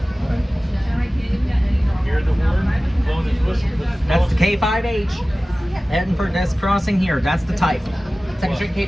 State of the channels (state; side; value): normal; both; correlation 0.97